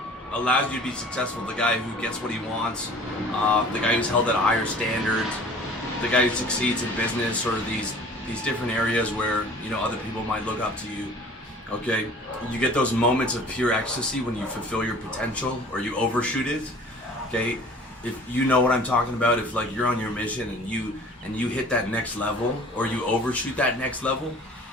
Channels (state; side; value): normal; both; correlation 0.47